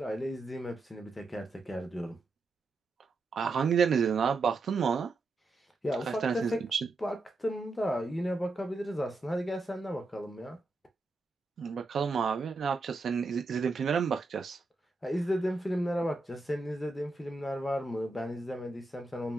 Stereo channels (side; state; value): left; quieter; 3.4 dB